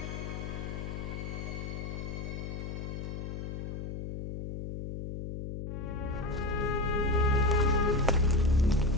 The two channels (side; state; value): left; noise; hum, 6 dB below the sound